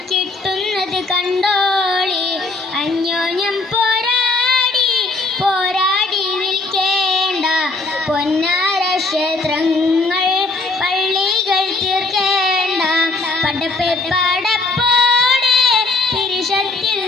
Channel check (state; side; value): quieter; right; 3.3 dB